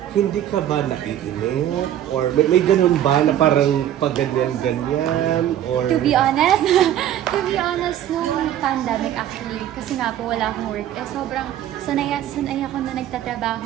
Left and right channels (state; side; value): quieter; left; 11.5 dB